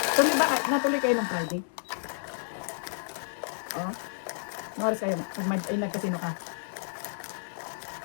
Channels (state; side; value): silent; right; digital silence